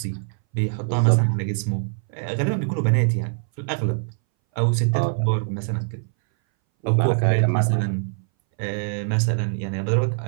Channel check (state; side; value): silent; left; 61 dB below the other